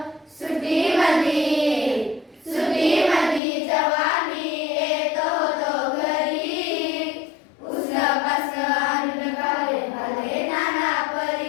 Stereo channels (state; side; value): drops out; right; at 3.4 s